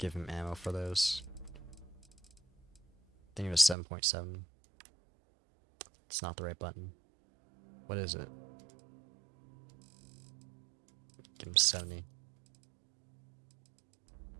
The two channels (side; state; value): left; drops out; at 3.8 s